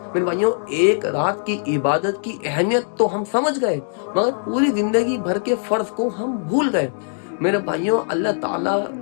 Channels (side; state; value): right; silent; digital silence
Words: मेरे भाइयों एक रात की इबादत की अहमियत तो हम समझ गए, मगर पूरी जिंदगी भर के फर्ज को हम भूल गए। मेरे भाइयों अल्लाह ताला